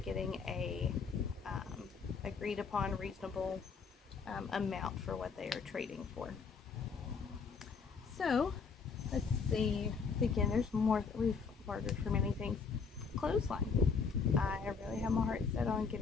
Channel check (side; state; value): right; quieter; 5.2 dB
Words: a agreed upon reasonable amount for what they are trading for. So let's see. Again, there's more that we've bartered for many things. Clothesline. I really have my heart set on